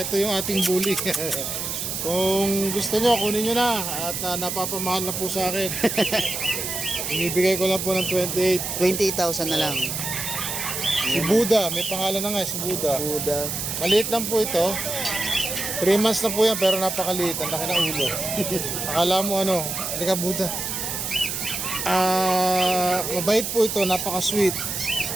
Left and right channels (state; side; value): noise; right; hiss, 3 dB below the sound